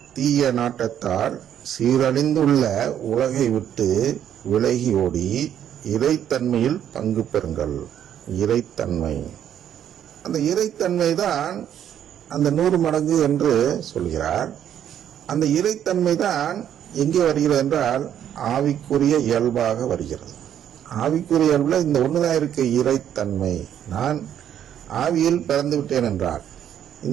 தீய நாட்டத்தால் சீரழிந்துள்ள உலகை விட்டு விலகி ஓடி இறைத்தன்மையில் பங்கு பெறுங்கள். இறைத்தன்மை, அந்த இறைத்தன்மை தான் அந்த 100 மடங்கு என்று சொல்கிறார். அந்த இறைத்தன்மை தான் எங்கே வருகிறது என்றால் ஆவிக்குரிய இயல்பாக வருகிறது. ஆவிக்குரிய இயல்புல இந்த ஒண்ணுதான் இருக்கு, இறைத்தன்மை. நான் ஆவியில் பிறந்து விட்டேன் என்றால்,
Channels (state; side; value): quieter; left; 10.0 dB